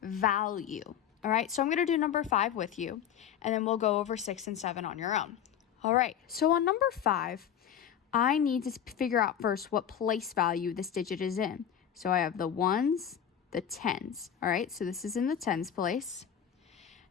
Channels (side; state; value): right; quieter; 9.2 dB